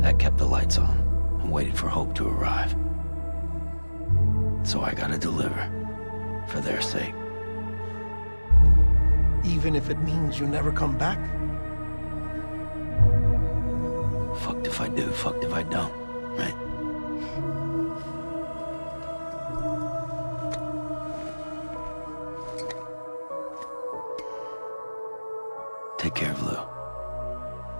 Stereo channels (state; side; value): inverted; both; correlation -1.00